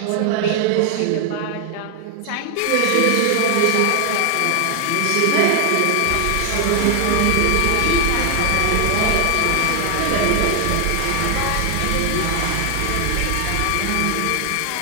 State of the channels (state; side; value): different; both; correlation 0.01